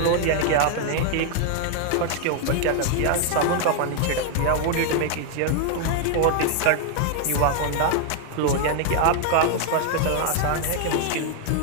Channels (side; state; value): both; different; correlation 0.00